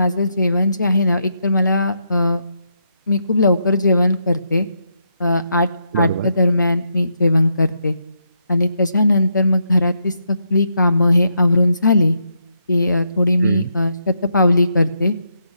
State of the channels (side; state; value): both; inverted; correlation -0.80